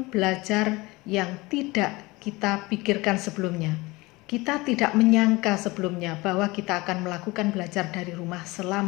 belajar yang tidak kita pikirkan sebelumnya. Kita tidak menyangka sebelumnya bahwa kita akan melakukan belajar dari rumah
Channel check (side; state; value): right; quieter; 22.4 dB